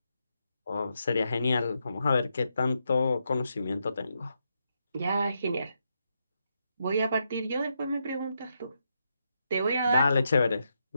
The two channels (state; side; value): inverted; both; correlation -0.82